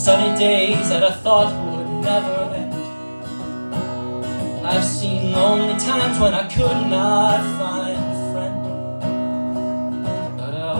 days that I thought would never end. I've seen lonely times when I could not find a friend. But I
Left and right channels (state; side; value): inverted; both; correlation -1.00